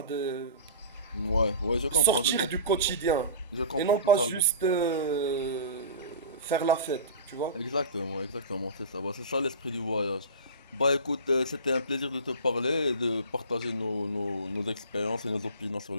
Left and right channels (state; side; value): inverted; both; correlation -0.34